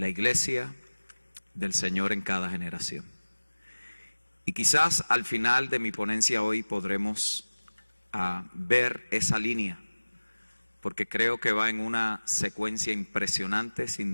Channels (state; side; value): inverted; both; correlation -1.00